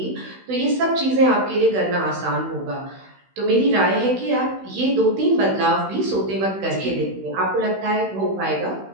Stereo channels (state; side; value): late; left; 16 ms